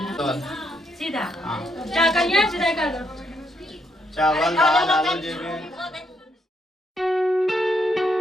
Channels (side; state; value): both; normal; correlation 0.76